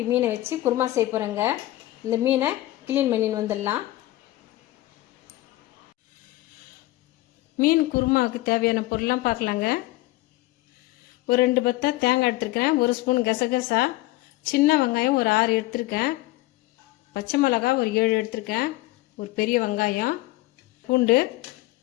மீனை வச்சு குருமா செய்ய போகிறேங்க. இந்த மீனை க்ளீன் பண்ணின்னு வந்துடலாம். மீன் குருமாவுக்கு தேவையான பொருள்லாம் பார்க்கலாங்க. ஒரு 2 பத்தை தேங்காய் எடுத்துருக்கேன், 1 ஸ்பூன் கசகசா, சின்ன வெங்காயம் ஒரு 6 எடுத்துருக்கேன், பச்சை மிளகாய் ஒரு 7 எடுத்துருக்கேன், ஒரு பெரிய வெங்காயம், பூண்டு,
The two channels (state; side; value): quieter; right; 17.8 dB